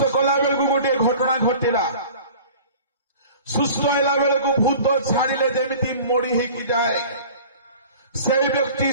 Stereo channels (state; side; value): inverted; both; correlation -0.44